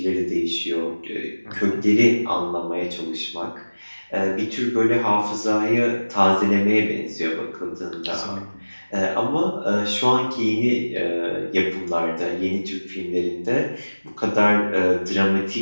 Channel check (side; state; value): both; inverted; correlation -1.00